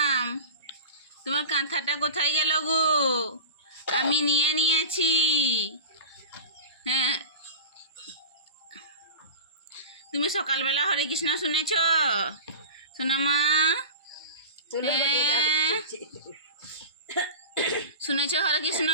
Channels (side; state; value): both; inverted; correlation -0.30